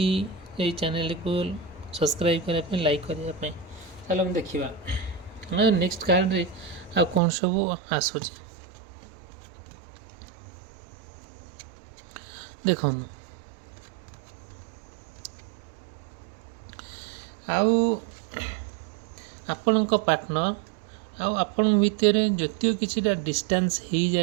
ଏଇ ଚ୍ୟାନେଲକୁ ସବସ୍କ୍ରାଇବ୍ କରିବା ପାଇଁ, ଲାଇକ୍ କରିବା ପାଇଁ। ଚାଲ ଆମେ ଦେଖିବା ନେକ୍ସଟ କାର୍ଡ଼ରେ ଆଉ କ'ଣ ସବୁ ଆସୁଛି। ଦେଖନ୍ତୁ, ଆଉ ଆପଣଙ୍କ ପାର୍ଟନର ଆଉ ଆପଣଙ୍କ ଭିତରେ ଯଦିଓ କିଛିଟା ଡିଷ୍ଟାନ୍ସ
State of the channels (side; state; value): left; drops out; at 7.2 s